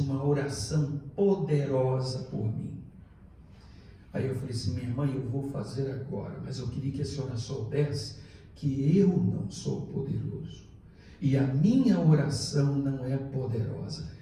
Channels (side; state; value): both; identical; correlation 1.00